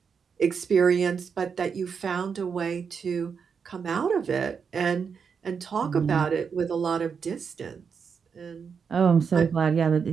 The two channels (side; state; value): left; quieter; 6.2 dB